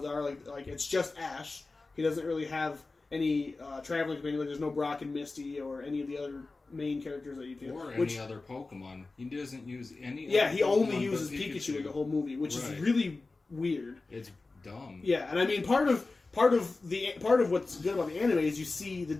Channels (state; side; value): quieter; right; 3.5 dB